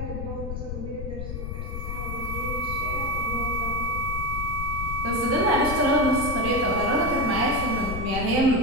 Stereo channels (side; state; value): left; noise; rumble, 5 dB below the sound